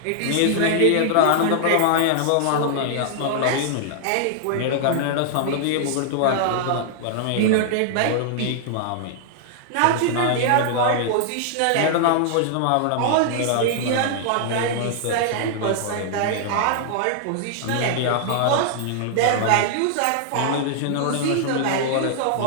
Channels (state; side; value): different; both; correlation -0.01